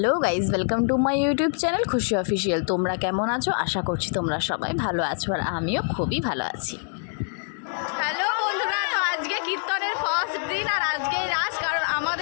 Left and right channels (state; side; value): silent; right; digital silence